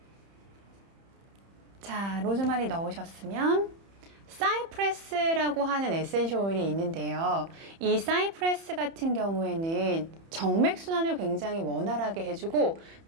자, 로즈마리 넣으셨으면 사이프레스라고 하는 에센셜 오일이 있는데요. 이 사이프레스 같은 경우에는 정맥순환을 굉장히 원활하게 해주고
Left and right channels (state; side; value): late; left; 30 ms